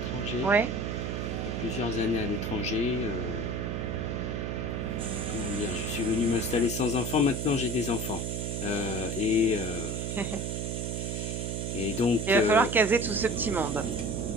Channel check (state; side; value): noise; right; hum, 2 dB below the sound